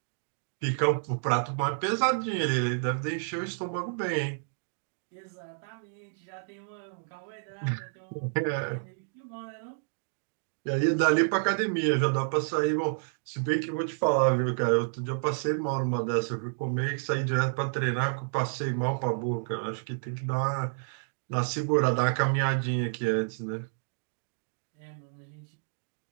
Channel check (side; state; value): left; silent; digital silence